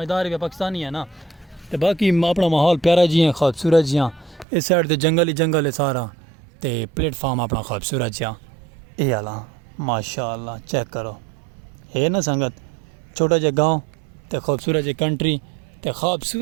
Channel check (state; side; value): drops out; left; at 4.5 s